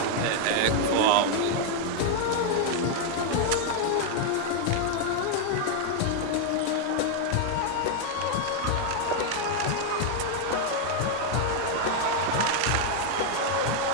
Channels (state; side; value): different; both; correlation 0.00